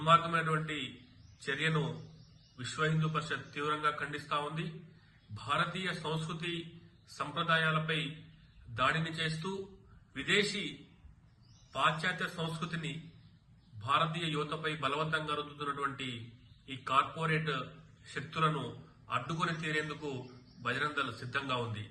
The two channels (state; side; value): identical; both; correlation 1.00